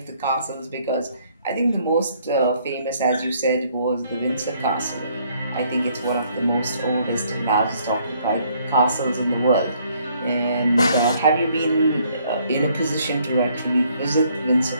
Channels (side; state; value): both; inverted; correlation -0.65